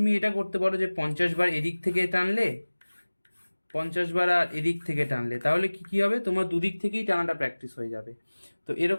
এটা করতে পারো যে 50বার এদিক থেকে টানলে, 50বার আর এদিক থেকে টানলে, তাহলে কি কি হবে, তোমার দুদিক থেকেই টানাটা প্র্যাকটিস হয়ে যাবে। তো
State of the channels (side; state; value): both; inverted; correlation -1.00